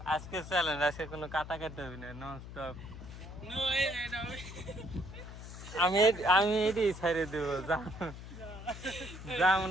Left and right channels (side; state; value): left; noise; hum, 12 dB below the sound